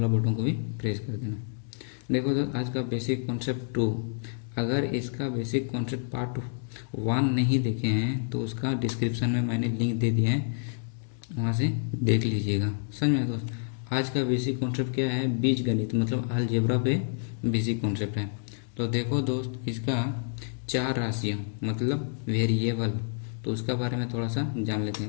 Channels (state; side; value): silent; right; digital silence